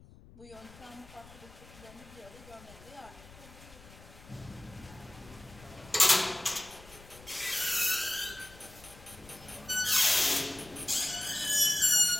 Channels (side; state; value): left; noise; rumble, 20 dB below the sound